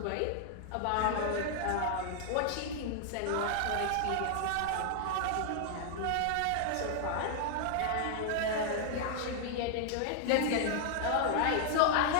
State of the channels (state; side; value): different; both; correlation 0.00